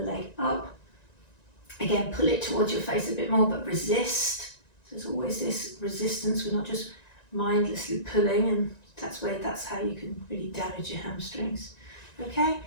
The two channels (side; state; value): right; late; 1.9 ms